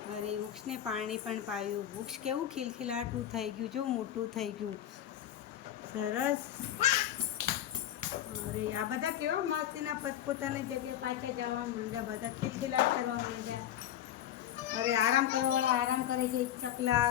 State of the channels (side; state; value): right; quieter; 11.4 dB